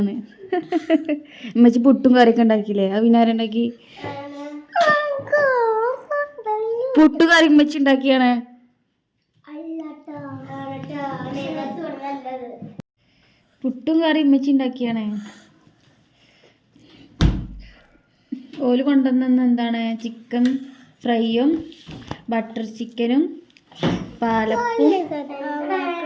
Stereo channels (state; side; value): identical; both; correlation 1.00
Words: ഉമ്മച്ചി പുട്ടും കറിയൊക്കെ ഉണ്ടാക്കിയില്ലേ? അത് പിന്നെ ആരുണ്ടാക്കി? പുട്ടു കറി ഉമ്മച്ചി ഉണ്ടാക്കിയാണ്. പുട്ടും കറി ഉമ്മച്ചി ഉണ്ടാക്കിയാണ്. ഓല് കൊണ്ടുവന്ന എന്താണ്? ചിക്കൻ ഫ്രൈയും ബട്ടർ ചിക്കനും പാലപ്പും